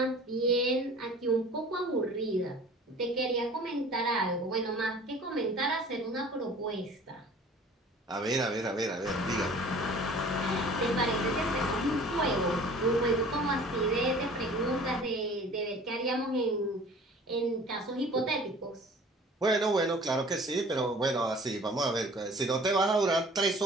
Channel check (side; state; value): both; normal; correlation 0.47